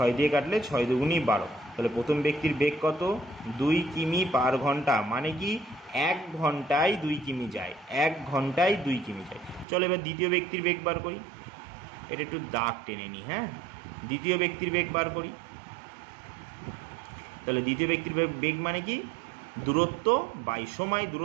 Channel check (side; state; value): left; drops out; at 9.7 s